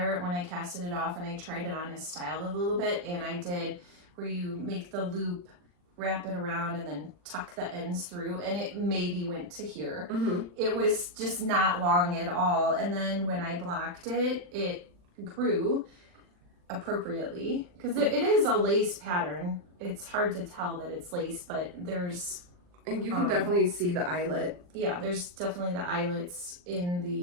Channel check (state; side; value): late; left; 40 ms